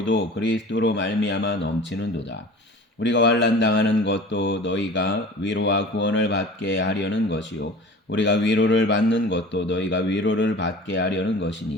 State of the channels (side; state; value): both; normal; correlation 0.40